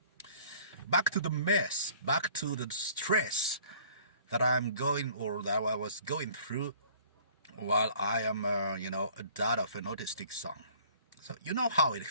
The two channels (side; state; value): both; inverted; correlation -0.53